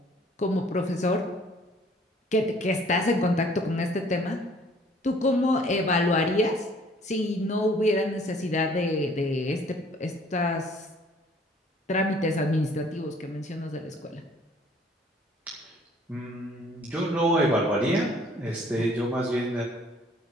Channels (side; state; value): both; normal; correlation 0.57